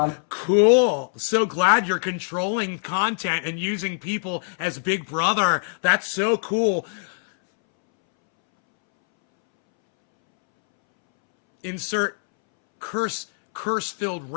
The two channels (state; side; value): silent; right; 63 dB below the other